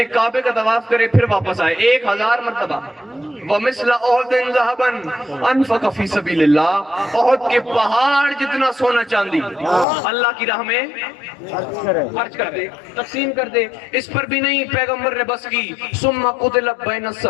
کعبے کا طواف کرے, پھر واپس آئے 1000 مرتبہ. وَمِثْلَ أُحُدٍ ذَهَبًا أَنفَقَ فِي سَبِيلِ اللَّهِ, احد کے پہاڑ جتنا سونا چاندی اللہ کی راہ میں خرچ کر دے, تقسیم کر دے. اس پر بھی نہیں, پیغمبر نے بس کی. ثُمَّ قُتِلَ بَيْنَ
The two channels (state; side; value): drops out; right; at 9.9 s